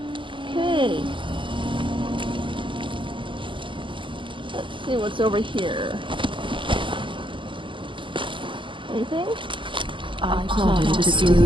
Okay. Let's see what's over here. Anything? I plotted to steal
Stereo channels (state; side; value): late; left; 0.24 ms